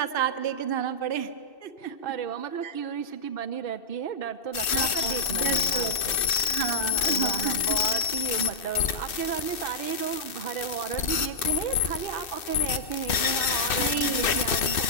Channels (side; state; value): right; late; 2.6 ms